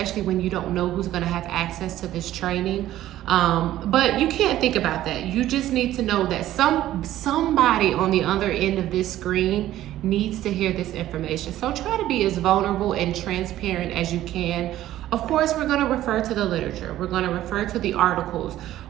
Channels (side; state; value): left; quieter; 13.7 dB